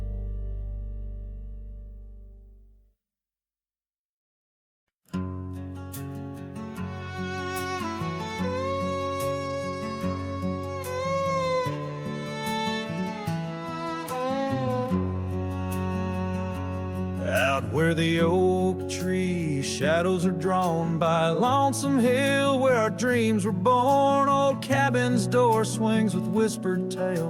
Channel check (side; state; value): both; identical; correlation 1.00